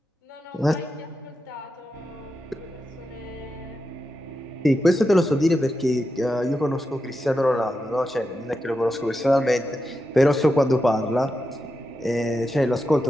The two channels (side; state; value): both; normal; correlation 0.88